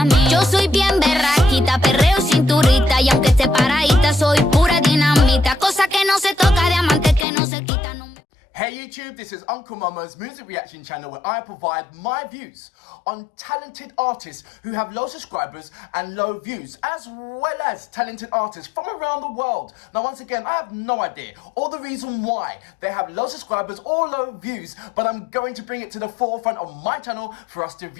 mí. Yo soy bien berraquita, perreo cinturita, y aunque esté paradita, soy pura dinamita. Cosa que no se toca, diamante que no se quita. No me... Hey YouTube, this is Uncle Momo's music reaction channel where I provide my views on talented artists who have low subscribers and low views, as well as talented artists from around the world. Now once again, I have no idea or the reason why they have low subscribers or low views, but I'm going to bring it to the forefront of my channel for us to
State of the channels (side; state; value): right; drops out; at 7.2 s